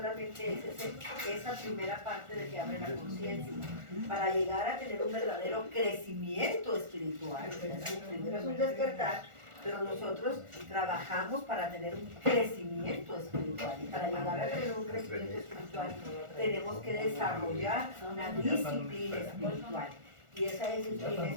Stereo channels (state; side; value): late; left; 1.4 ms